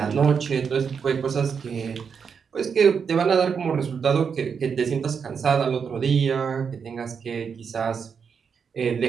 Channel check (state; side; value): quieter; left; 6.4 dB